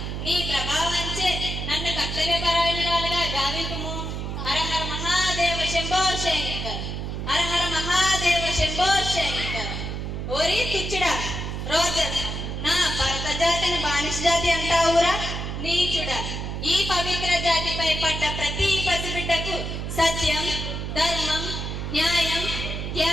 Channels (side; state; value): right; noise; hum, 4 dB below the sound